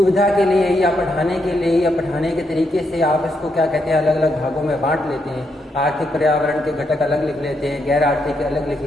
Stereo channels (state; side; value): normal; both; correlation 0.79